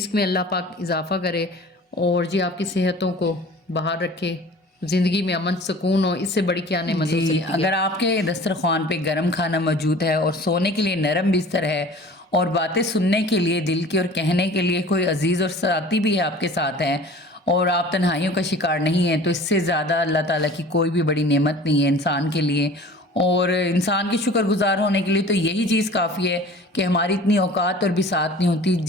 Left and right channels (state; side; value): normal; both; correlation 0.44